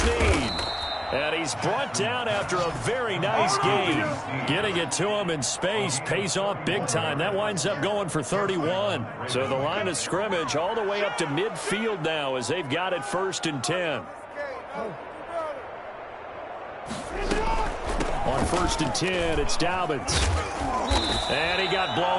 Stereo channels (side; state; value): both; identical; correlation 1.00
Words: And he's brought down after a very nice game. Getting it to him in space pays off big time. That winds up going for 31. So the line of scrimmage all the way up to midfield now as they've got it 1st and 10. On 1st and 10, it's Dobbins. And he got